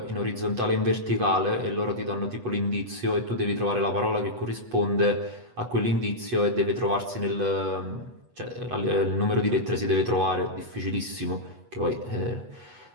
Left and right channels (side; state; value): left; late; 8.2 ms